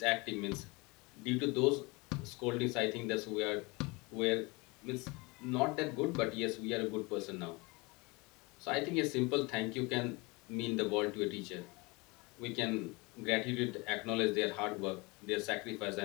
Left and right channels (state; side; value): quieter; right; 26.0 dB